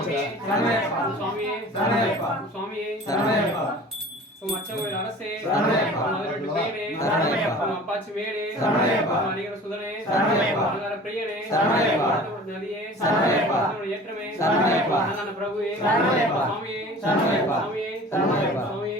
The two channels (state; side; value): normal; both; correlation 0.43